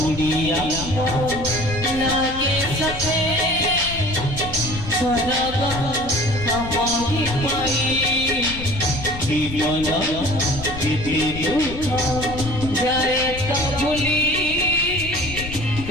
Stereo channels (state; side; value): noise; left; rumble, 10 dB below the sound